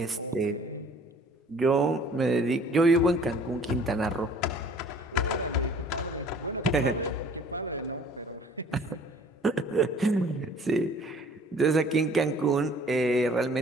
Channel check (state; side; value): normal; both; correlation 0.53